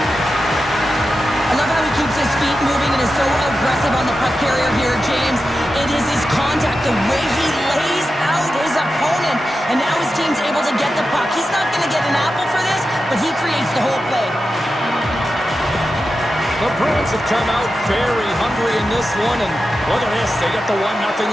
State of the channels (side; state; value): both; normal; correlation 0.91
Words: I love how he keeps his feet moving and is so aggressive on the puck carrier here, James. It is his contact, the way he lays out his opponent. And now his team's able to get the puck. He's not going to get an apple for this, but he creates the whole play. The Bruins have come out very hungry in this one, and look at this, they get the